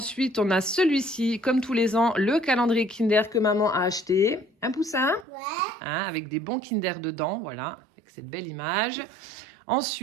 on a celui-ci, comme tous les ans, le calendrier Kinder que maman a acheté. Un Poussin? Ouais. Hein, avec des bons Kinder dedans, voilà, avec cette belle image.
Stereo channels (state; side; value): drops out; left; at 5.2 s